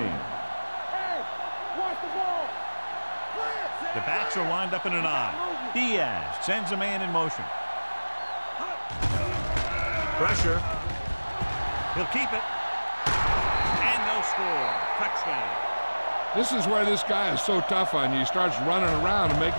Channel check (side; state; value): both; inverted; correlation -1.00